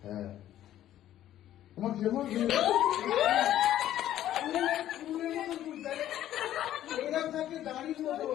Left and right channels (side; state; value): right; quieter; 12.4 dB